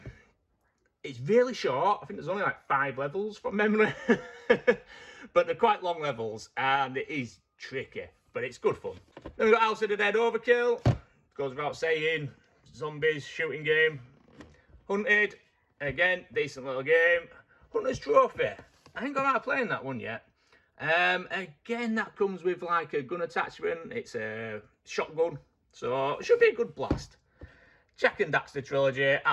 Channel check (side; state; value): both; identical; correlation 1.00